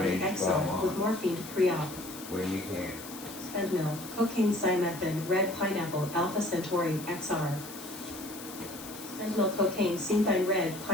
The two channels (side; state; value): left; noise; hiss, 13 dB below the sound